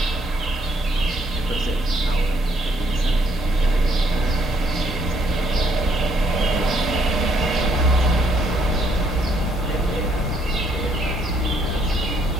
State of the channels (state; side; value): normal; both; correlation 0.70